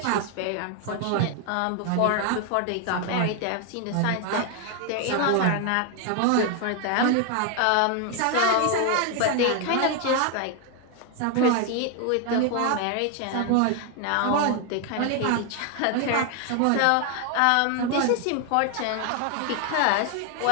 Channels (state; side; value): different; both; correlation 0.01